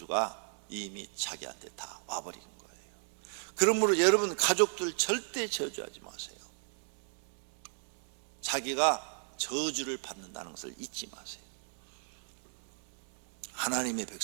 이미 자기한테 다 와버린 거예요. 그러므로 여러분 가족들 절대 저주하지 마세요. 자기가 저주를 받는다는 것을 잊지 마세요. 하나님의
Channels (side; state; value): left; silent; 54 dB below the other